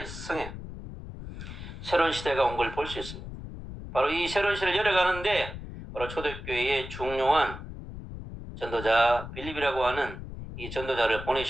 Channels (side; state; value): left; noise; rumble, 10 dB below the sound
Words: 성에 새로운 시대가 온 걸 볼 수 있습니다. 바로 이 새로운 시대를 열어가는데 바로 초대교회의 중요한 전도자 빌립이라고 하는 이 전도자를